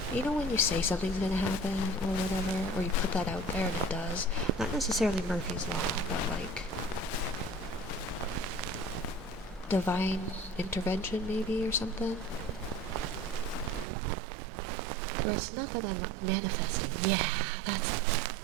You know when you say something's gonna happen or whatever, or you put that out there and it does? Not necessarily Murphy's Law, but like divine intervention maybe or something? Or it's not that I'm manifesting. Yeah, that's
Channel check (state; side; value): drops out; left; at 13.9 s